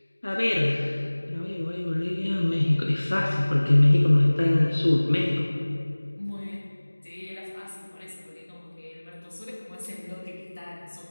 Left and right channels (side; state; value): both; inverted; correlation -1.00